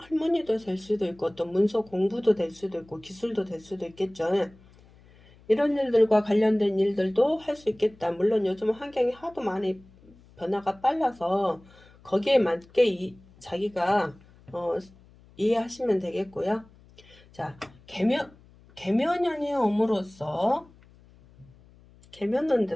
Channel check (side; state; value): left; noise; hum, 26 dB below the sound